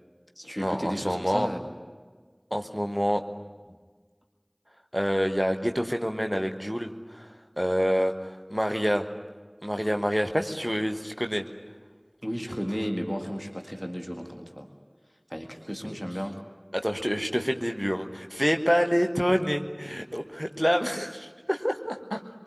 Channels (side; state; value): both; identical; correlation 1.00